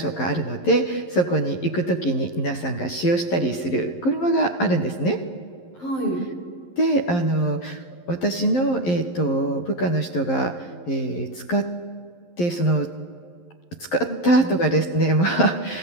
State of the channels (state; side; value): late; right; 11 ms